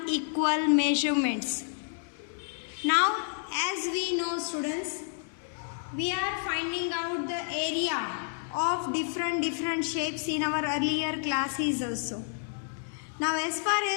measurements. Now as we know students, we are finding out the area of different shapes in our earlier classes also. Now as far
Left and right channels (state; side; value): silent; right; digital silence